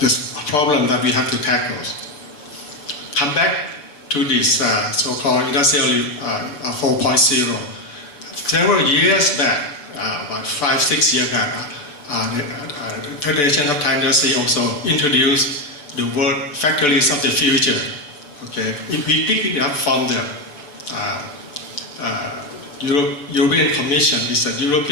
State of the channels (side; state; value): right; late; 6.9 ms